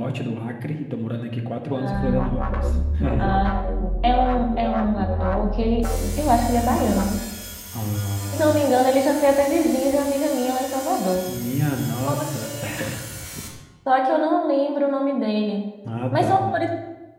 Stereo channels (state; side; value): identical; both; correlation 1.00